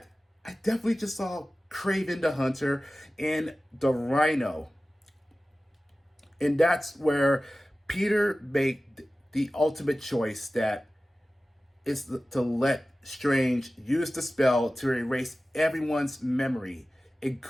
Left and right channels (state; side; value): normal; both; correlation 0.96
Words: I definitely just saw Kraven the Hunter and the Rhino. And that's where Peter made the ultimate choice, that is to let Strange use the spell to erase everyone's memory,